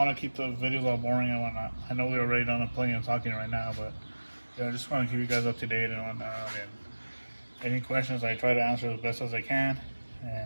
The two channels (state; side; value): inverted; both; correlation -1.00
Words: to keep the videos all boring and whatnot. I know we're already done plenty of talking right now, but I just want to keep you guys up to date and whatnot. And any questions, I try to answer as best as I can.